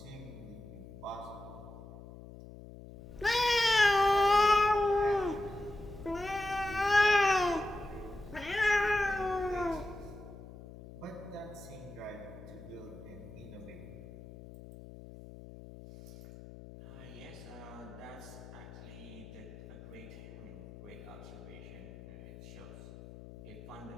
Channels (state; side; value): noise; left; hum, 15 dB below the sound